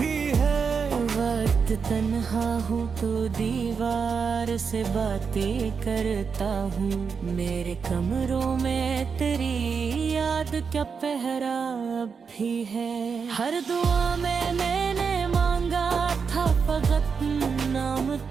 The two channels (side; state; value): left; quieter; 5.8 dB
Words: है। वक्त तन्हा हूँ तो दीवार से बातें करता हूँ, मेरे कमरों में तेरी याद क्या पहरा भी है। हर दुआ में मैंने मांगा था फकत नाम